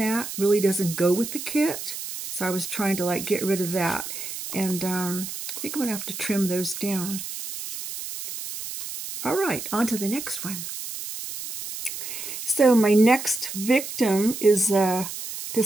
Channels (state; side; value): noise; right; hiss, 8 dB below the sound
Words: really doesn't go with the kit. So I was trying to like get rid of that. And I think I'm going to have to trim those down. All right, on to the next one. So my next victim is